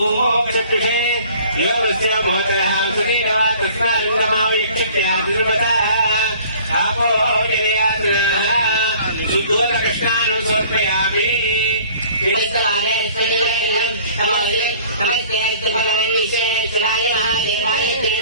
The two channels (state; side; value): inverted; both; correlation -0.50